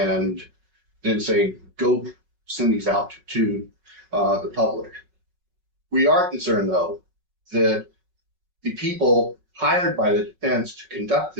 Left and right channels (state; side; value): late; left; 5.4 ms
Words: then say, go send these out to the public. We are concerned, though, that the people hired by the defense to conduct